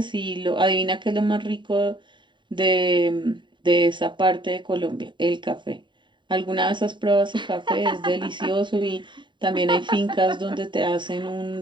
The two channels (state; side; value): late; left; 0.23 ms